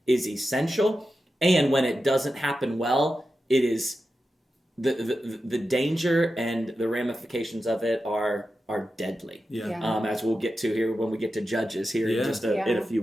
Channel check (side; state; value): both; normal; correlation 0.91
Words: is essential. And when it doesn't happen well, it is the danger and the ramifications of it are deadly. As we'll get to here when we get to Judges here in just in a few